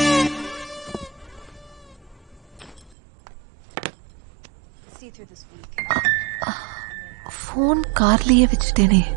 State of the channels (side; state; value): left; drops out; at 3.0 s